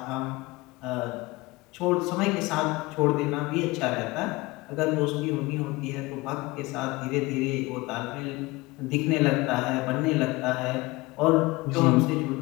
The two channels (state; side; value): quieter; right; 22.1 dB